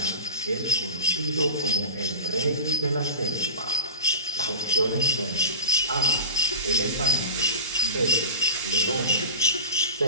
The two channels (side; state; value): both; inverted; correlation -0.33